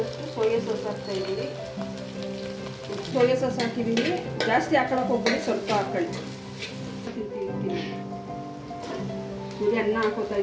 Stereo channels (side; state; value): both; identical; correlation 1.00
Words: ಸೋಯಾ ಸಾಸ್ ಹಾಕ್ತಾ ಇದ್ದೀನಿ. ಸೋಯಾ ಸಾಸ್ ಹಾಕಿದ್ದೀನಿ, ಜಾಸ್ತಿ ಹಾಕೊಳ್ಳೋಕೆ ಹೋಗ್ಬೇಡಿ, ಸ್ವಲ್ಪ ಹಾಕೊಳ್ಳಿ. ನೋಡಿ, ಅನ್ನ ಹಾಕೋತಾ